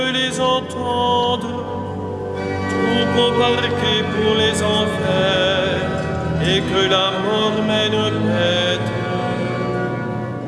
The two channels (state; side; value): identical; both; correlation 1.00